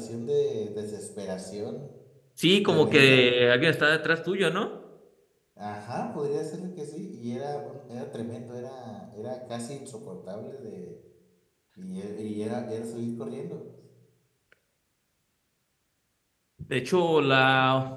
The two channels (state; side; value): identical; both; correlation 1.00